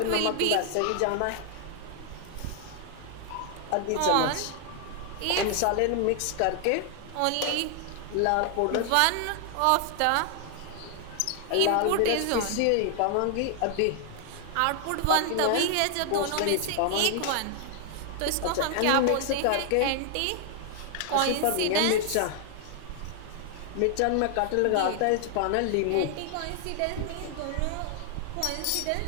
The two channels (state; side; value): different; both; correlation 0.00